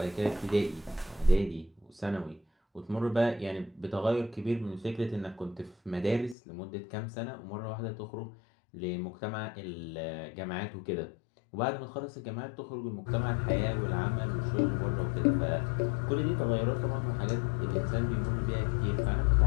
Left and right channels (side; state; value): right; drops out; at 6.4 s